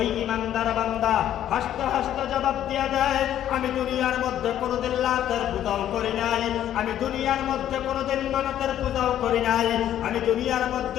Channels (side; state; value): right; quieter; 11.3 dB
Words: ইমানদার বান্দা হাসতে হাসতে জবাব দিয়া দেয়, আমি দুনিয়ার মধ্যে কোনোদিন লাতের পূজাও করি নাই, আমি দুনিয়ার মধ্যে কোনোদিন মানতের পূজাও করি নাই, আমি দুনিয়ার